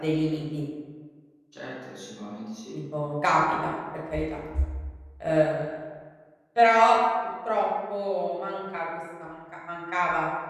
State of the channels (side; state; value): both; identical; correlation 1.00